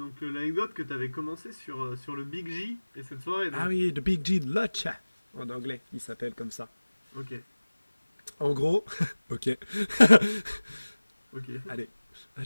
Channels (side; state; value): both; inverted; correlation -1.00